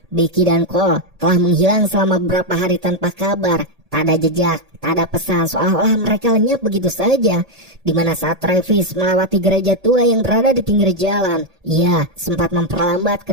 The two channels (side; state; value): left; late; 1.8 ms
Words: Becky dan Cole telah menghilang selama beberapa hari tanpa kabar. Tak ada jejak, tak ada pesan, seolah-olah mereka lenyap begitu saja. Dimana saat Travis melewati gereja tua yang berada di pinggir jalan, ia sempat memperlambat